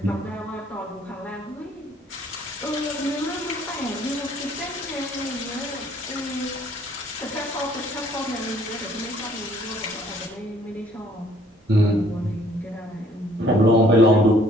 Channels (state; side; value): normal; both; correlation 0.60